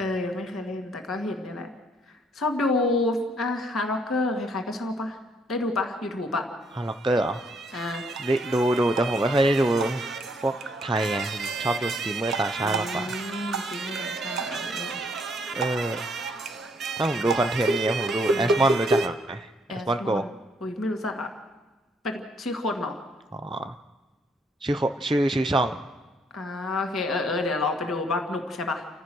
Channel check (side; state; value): both; normal; correlation 0.69